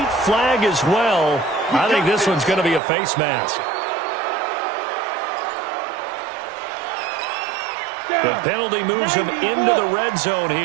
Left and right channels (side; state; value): left; drops out; at 2.8 s